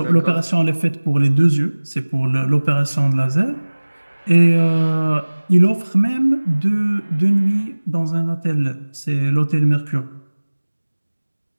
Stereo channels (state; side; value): inverted; both; correlation -1.00